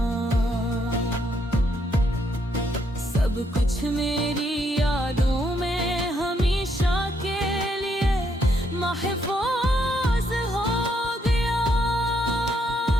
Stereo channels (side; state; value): both; normal; correlation 0.74